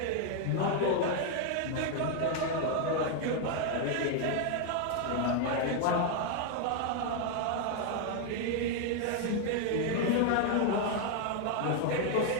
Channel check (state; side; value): different; both; correlation 0.00